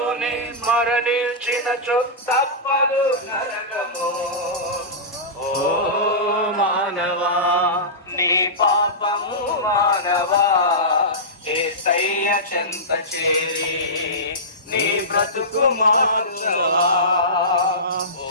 మరణించినచో తప్పదు నరకము. ఓ మానవా నీ పాపము మానవా, యేసయ్య చెంత చేరి నీ బ్రతుకు మార్చవా. ఓ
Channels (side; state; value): both; normal; correlation -0.17